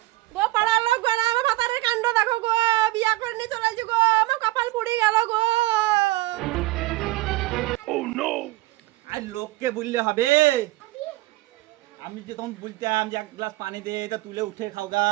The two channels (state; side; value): quieter; left; 19.0 dB